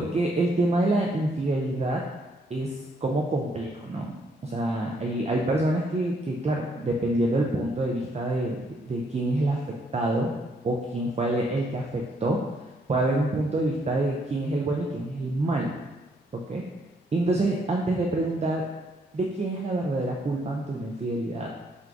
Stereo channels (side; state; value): both; normal; correlation 0.71